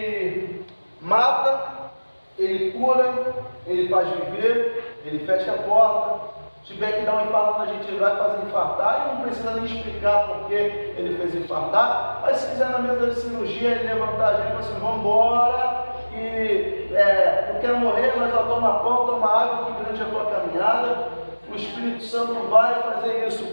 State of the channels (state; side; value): inverted; both; correlation -1.00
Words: mata, ele cura, ele faz viver, ele fecha a porta. Se tiver que dar um infarto na gente, ele vai fazer infartar, e não precisa nem explicar porque ele fez infartar. Mas se quiser na mesa de cirurgia, ele levantar a gente e falar assim, vamos embora, e não quero morrer, mas ó, toma pão, toma água, que grande é a tua caminhada. O Espírito Santo vai fazer isso.